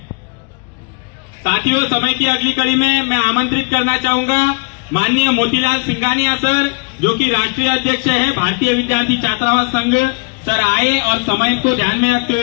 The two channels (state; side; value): quieter; right; 33.8 dB